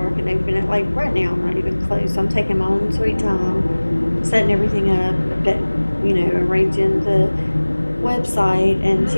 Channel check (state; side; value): inverted; both; correlation -1.00